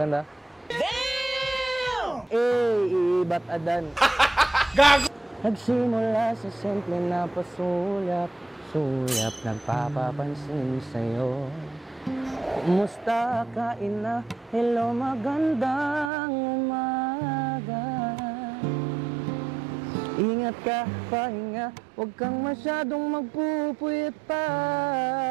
Damn! Iibat adan. Gago! Nagsimula sa simple na pasulyap, nagpapapansin sa'yo. Kumusta ka, ina? Hello, magandang umaga. Ingat ka, pahinga, huwag kang masyadong magpupuyat pa.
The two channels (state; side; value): drops out; left; at 16.1 s